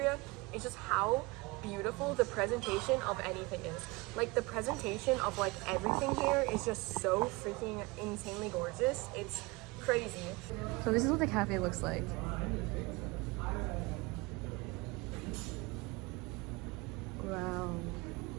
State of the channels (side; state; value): left; quieter; 24.4 dB